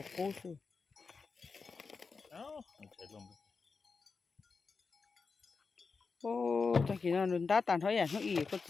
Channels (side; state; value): right; quieter; 4.8 dB